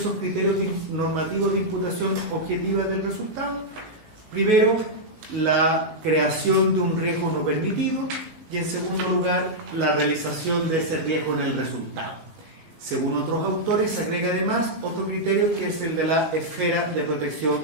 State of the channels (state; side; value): late; left; 19 ms